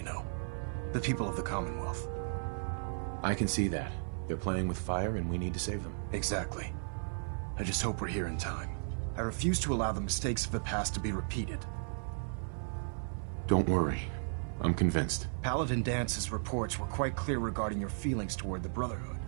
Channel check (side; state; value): left; silent; 54 dB below the other